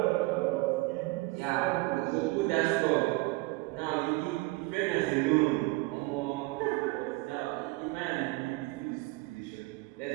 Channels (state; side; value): quieter; left; 22.7 dB